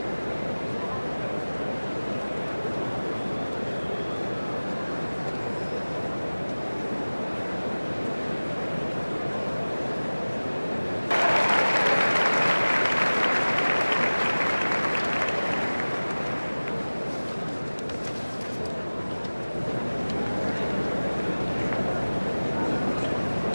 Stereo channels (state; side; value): inverted; both; correlation -1.00